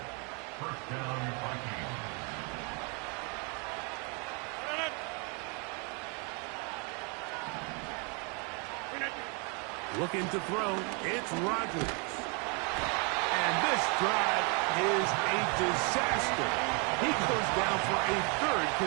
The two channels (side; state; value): left; quieter; 34.0 dB